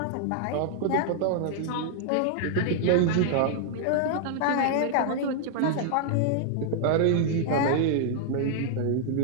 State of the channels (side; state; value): both; different; correlation -0.01